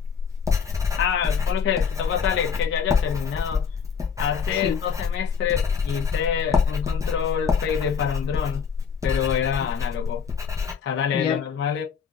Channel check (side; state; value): right; quieter; 6.5 dB